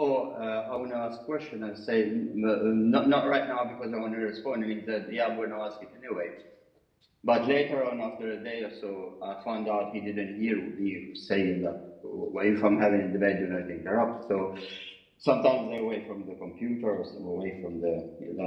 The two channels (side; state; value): both; identical; correlation 1.00